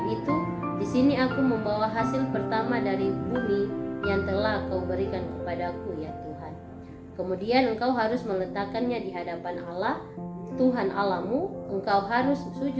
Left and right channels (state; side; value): identical; both; correlation 1.00